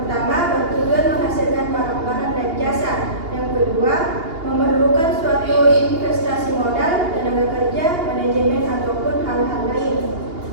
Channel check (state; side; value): late; left; 2.8 ms